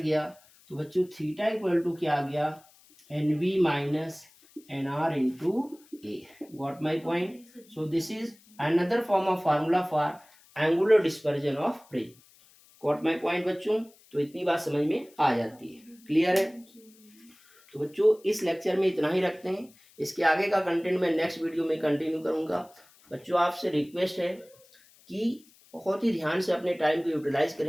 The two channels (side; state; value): left; noise; hiss, 28 dB below the sound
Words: तो बच्चों थीटा इक्वल टू क्या आ गया, NV minus NR into A. Got my point. So this is another form of formula for angular dispersion of prism. Got my point बच्चों, तो इतनी बात समझ में आ जाती है, क्लियर है। तो बच्चों इस लेक्चर में इतना ही रखते हैं, इसके आगे का कंटेंट मैं नेक्स्ट वीडियो में कंटिन्यू करूंगा। बच्चों आपसे रिक्वेस्ट है कि बहुत ही ध्यान से अपने टाइम को यूटिलाइज